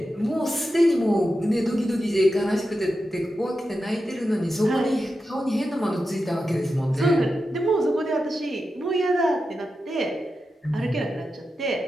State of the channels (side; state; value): both; normal; correlation 0.90